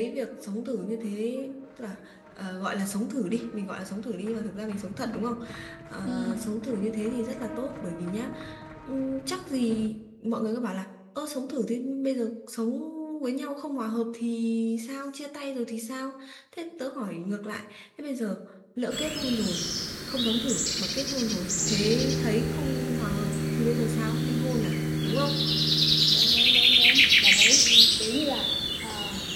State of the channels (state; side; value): identical; both; correlation 1.00